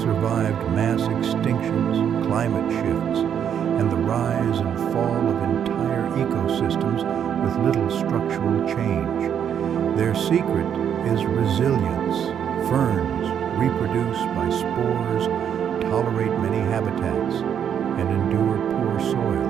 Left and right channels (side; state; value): left; quieter; 8.6 dB